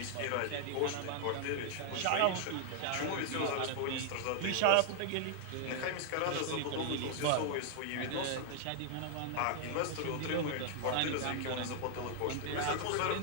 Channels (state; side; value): different; both; correlation 0.00